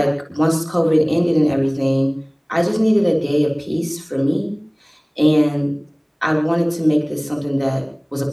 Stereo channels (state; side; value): identical; both; correlation 1.00